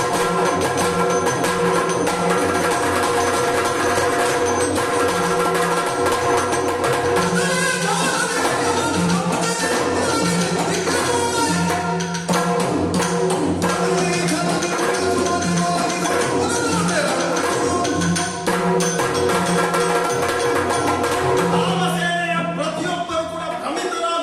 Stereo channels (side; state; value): both; identical; correlation 1.00